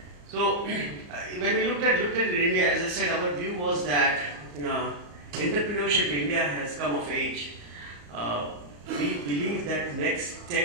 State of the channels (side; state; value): left; late; 34 ms